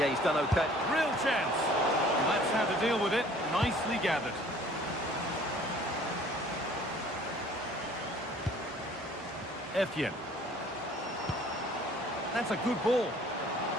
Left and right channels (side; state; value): both; normal; correlation 0.53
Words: he's done okay. Real chance. And that's how to deal with it. Nicely gathered. Etienne. That's a good ball.